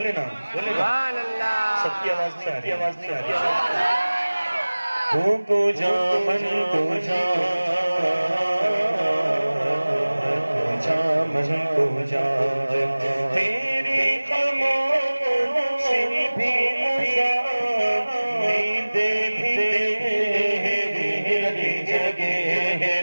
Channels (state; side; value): inverted; both; correlation -1.00